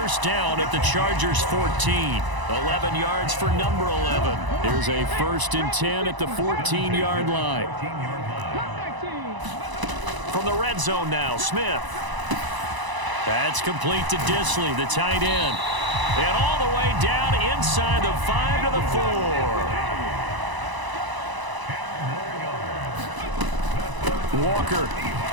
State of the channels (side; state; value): left; late; 1.0 ms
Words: down at the Chargers' 14. 11 yards for number 11. Here's a 1st and 10 at the 14-yard line. From the red zone now, Smith. That's complete to Disley, the tight end. And all the way down inside the 5 to the 4. Walker